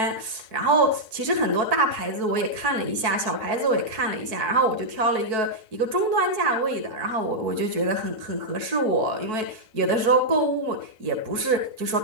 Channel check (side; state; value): left; late; 4.6 ms